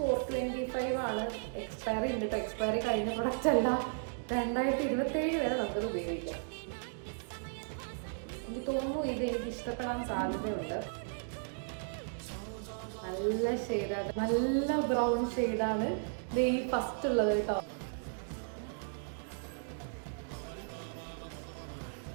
ആണ്. എക്സ്പയറി ഉണ്ട് കേട്ടോ. എക്സ്പയറി കഴിഞ്ഞ പ്രൊഡക്റ്റ് അല്ല. 2027 വരെ നമുക്കത് ഉപയോഗിക്കാം. എനിക്ക് തോന്നുന്നു ഇത് എനിക്ക് ഇഷ്ടപ്പെടാൻ സാധ്യതയുണ്ട്. നല്ല ഷെയ്ഡാണ്, നല്ല ബ്രൗൺ ഷെയ്ഡാണ് ഇത് ഈ ഫസ്റ്റ് ഉള്ളത് കേട്ടോ.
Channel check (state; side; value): silent; left; digital silence